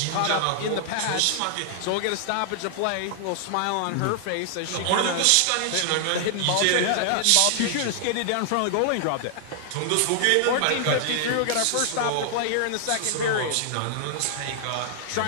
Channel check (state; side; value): different; both; correlation -0.01